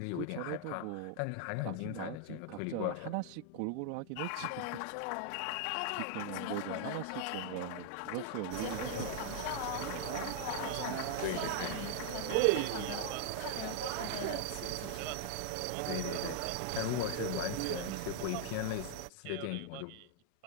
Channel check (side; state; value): both; different; correlation 0.00